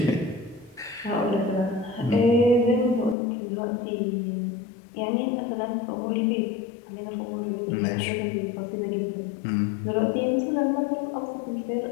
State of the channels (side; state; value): right; drops out; at 3.2 s